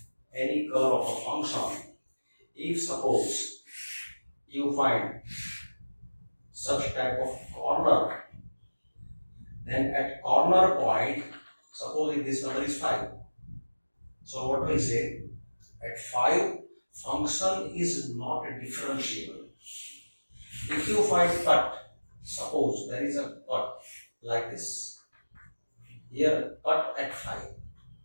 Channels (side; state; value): both; inverted; correlation -1.00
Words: of a function. If suppose you find such type of corner, then at corner point, suppose if this number is 5, so what do we say? At 5, function is not differentiable. If you find cut, suppose there is a cut like this, here cut at 5.